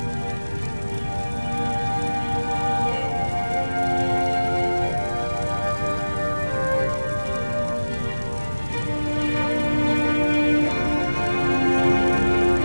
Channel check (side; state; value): both; inverted; correlation -1.00